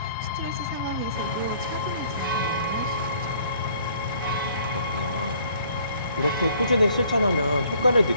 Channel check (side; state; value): both; inverted; correlation -0.59